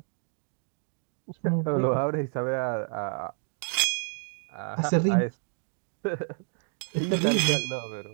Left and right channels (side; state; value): left; silent; 58 dB below the other